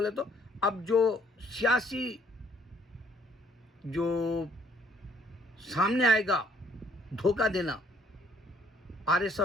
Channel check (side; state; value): both; normal; correlation 0.63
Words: تو. اب جو سیاسی جو سامنے آئے گا دھوکہ دینا آر ایس